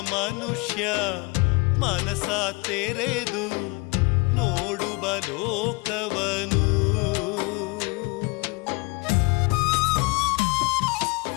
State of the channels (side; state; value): right; quieter; 27.4 dB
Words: ಮನಸ ತೆರೆದು ನೋಡುವ ಲೋಕವನು.